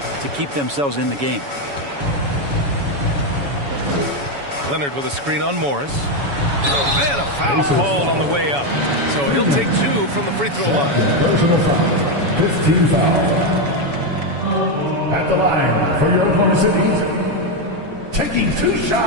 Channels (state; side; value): late; left; 7.1 ms